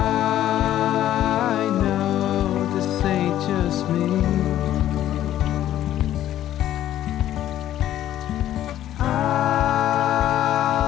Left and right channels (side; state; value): right; quieter; 12.5 dB